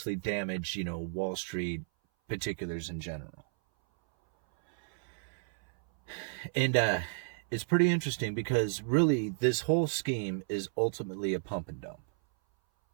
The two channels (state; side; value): silent; left; 56 dB below the other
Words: damage, Wall Street particulars in general. And it's pretty interesting because really this whole scheme is ultimately a pump and dump.